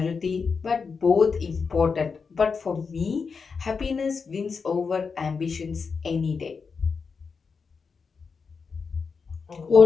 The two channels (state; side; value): quieter; right; 5.3 dB